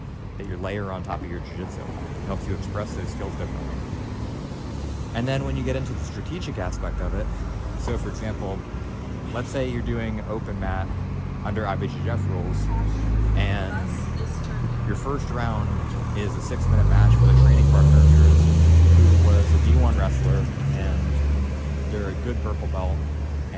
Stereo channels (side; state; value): both; identical; correlation 1.00